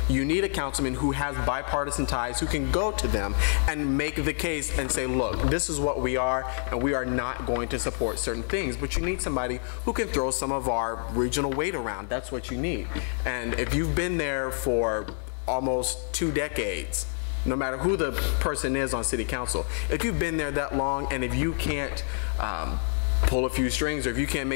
You need a councilman who has bipartisan ties, who can go to them and make the case and say, look, this is what we are, and we are not going to support certain things. But you need somebody who can throw some of our regional weight around. That's what you need. And if you've been there for almost 2 decades, no matter who the person is on city council, if you've been there that long and if you can't pull a few strings, or if you can't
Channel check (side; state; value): right; silent; 57 dB below the other